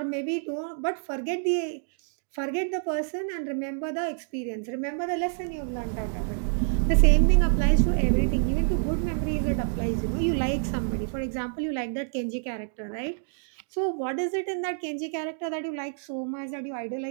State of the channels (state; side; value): silent; left; digital silence